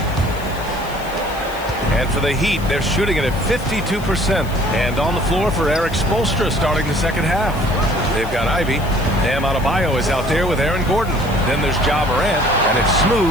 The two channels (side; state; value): left; noise; hiss, 19 dB below the sound